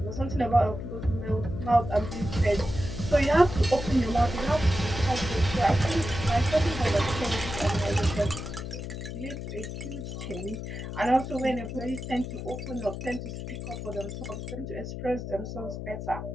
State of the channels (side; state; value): left; noise; hum, 7 dB below the sound